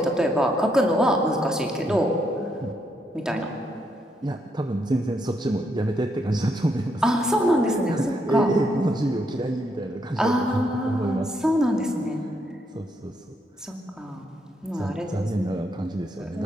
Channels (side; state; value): both; normal; correlation 0.77